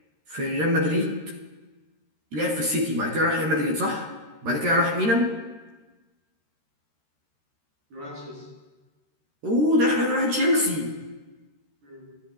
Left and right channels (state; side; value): late; left; 13 ms